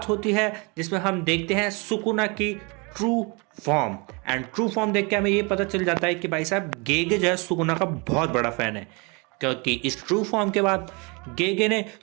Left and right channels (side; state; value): left; quieter; 29.9 dB